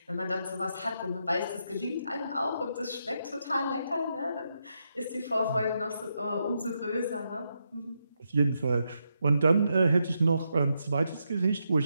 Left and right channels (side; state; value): both; inverted; correlation -0.82